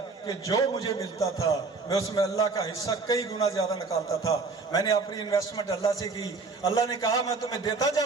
کہ جو مجھے ملتا تھا میں اس میں اللہ کا حصہ کئی گنا زیادہ نکالتا تھا۔ میں نے اپنی انویسٹمنٹ اللہ سے کی، اللہ نے کہا میں تمہیں دیتا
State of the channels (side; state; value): left; quieter; 4.1 dB